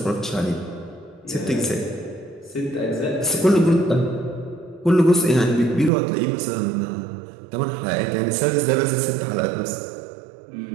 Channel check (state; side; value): drops out; left; at 5.9 s